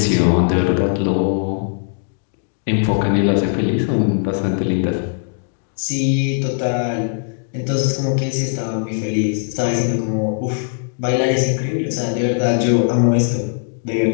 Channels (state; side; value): silent; right; digital silence